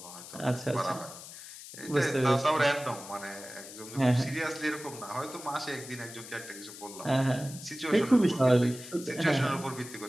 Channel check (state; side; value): noise; left; hiss, 14 dB below the sound